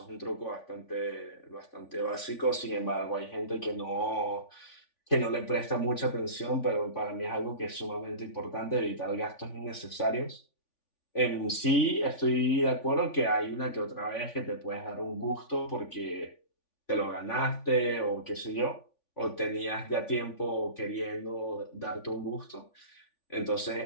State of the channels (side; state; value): right; late; 3.5 ms